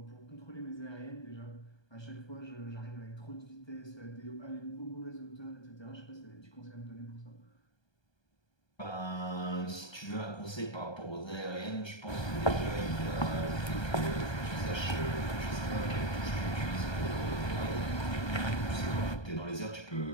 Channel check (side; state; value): right; late; 1.3 ms